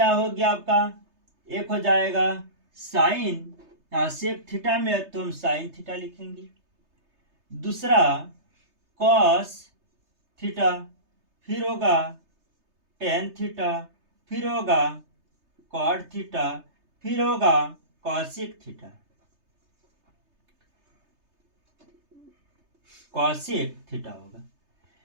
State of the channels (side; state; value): left; late; 3.3 ms